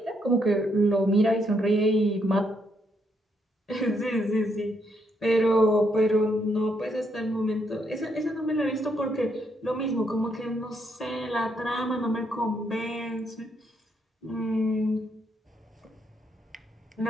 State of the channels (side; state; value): both; normal; correlation 0.75